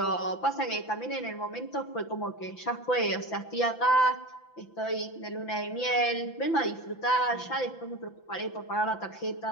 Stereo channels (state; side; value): late; right; 5.9 ms